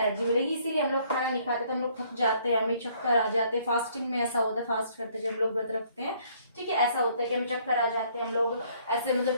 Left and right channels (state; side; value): inverted; both; correlation -0.63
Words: मिलेगी। इसीलिए हम लोग खाना नहीं खाते तो हम लोग थक जाते हैं, हमें चक्कर आ जाते हैं। फास्टिंग में ऐसा होता है, फास्ट करते जब हम लोग व्रत रखते हैं, ठीक है, ऐसा होता है कि हमें चक्कर आ जाते हैं, हम लोग ऐसे मतलब